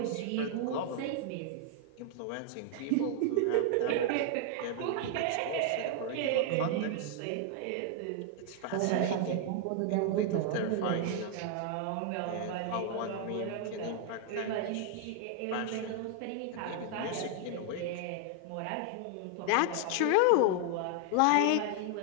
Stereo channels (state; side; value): different; both; correlation 0.00